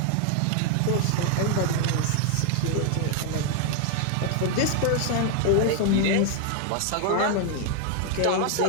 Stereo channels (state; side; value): different; both; correlation 0.00